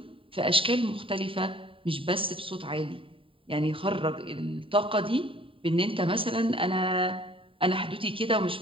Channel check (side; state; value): left; late; 0.26 ms